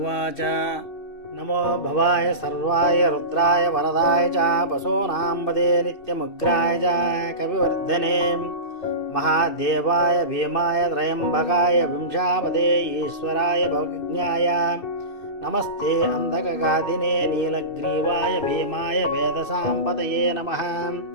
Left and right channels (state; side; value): late; right; 2.7 ms